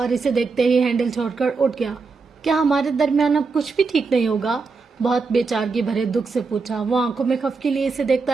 اسے دیکھتے ہی ہینڈل چھوڑ کر اٹھ گیا۔ کیا ہمارے درمیان اب کچھ بھی ٹھیک نہیں ہوگا؟ بہت بے چارگی بھرے دکھ سے پوچھا۔ وہ آنکھوں میں خفگی لیے اسے دیکھتا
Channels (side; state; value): left; quieter; 4.5 dB